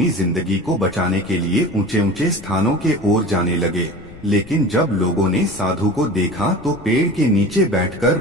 जिंदगी को बचाने के लिए ऊंचे ऊंचे स्थानों के ओर जाने लगे। लेकिन जब लोगों ने साधु को देखा तो पेड़ के नीचे बैठकर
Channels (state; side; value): noise; left; rumble, 19 dB below the sound